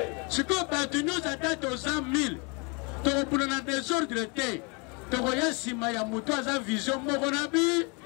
siko bato nyonso ata toza 1000 tokobunda na désordre te tokoya nsima ya moto aza vision moko na bi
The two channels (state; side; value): quieter; right; 31.9 dB